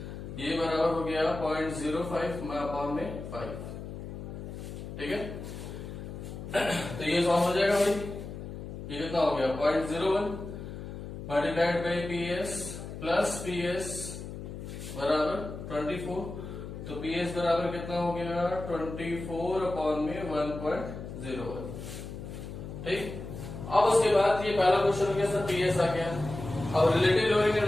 ये बराबर हो गया 0.05 में अपॉन में 5, ठीक है। तो ये सॉल्व हो जाएगा भाई, ये कितना हो गया 0.01 multiplied by P S plus P S बराबर 24, तो पी एस बराबर कितना हो गया 24 अपॉन में 1.01, ठीक। अब उसके बाद ये पहला क्वेश्चन हो गया सर पी एस आ गया। अब relative lowering and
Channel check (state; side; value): noise; left; hum, 9 dB below the sound